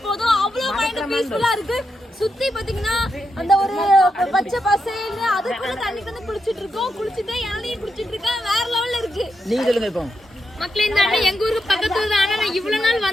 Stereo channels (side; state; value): both; normal; correlation 0.84